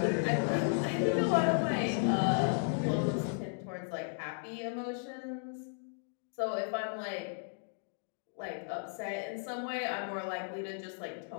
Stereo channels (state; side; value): silent; right; digital silence